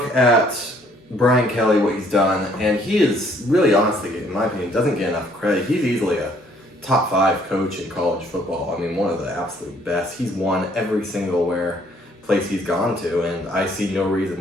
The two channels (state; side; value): normal; both; correlation 0.63